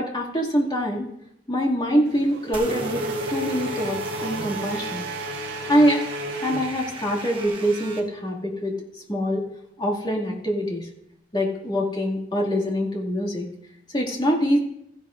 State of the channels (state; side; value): normal; both; correlation 0.70